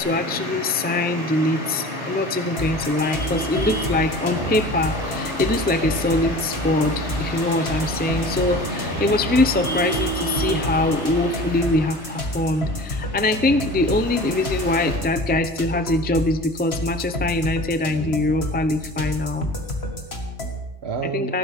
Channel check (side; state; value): both; normal; correlation 0.40